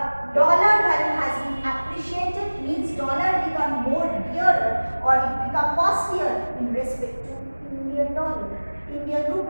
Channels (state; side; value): inverted; both; correlation -1.00